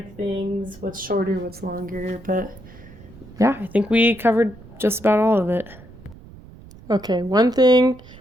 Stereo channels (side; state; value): right; noise; rumble, 20 dB below the sound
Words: things, what's shorter, what's longer. But yeah, I think we covered just about all of it. Okay, one